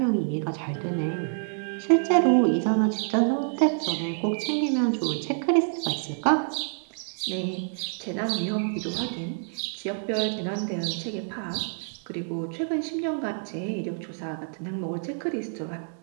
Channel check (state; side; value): silent; left; digital silence